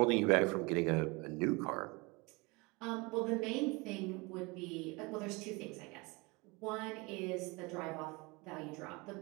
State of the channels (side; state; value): left; quieter; 26.6 dB